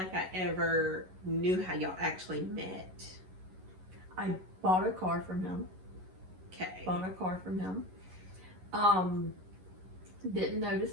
I ever knew how y'all actually met. I bought a car from him. Okay. Bought a car from him. Didn't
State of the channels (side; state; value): left; late; 11 ms